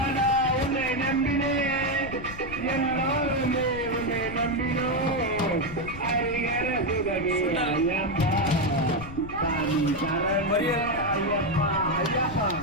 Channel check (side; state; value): left; noise; rumble, 12 dB below the sound